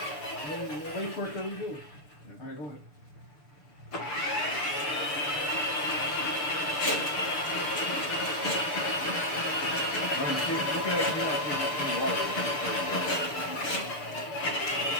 Wait for it to redo. All right, go ahead. Looking at you in water.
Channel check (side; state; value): right; late; 6.8 ms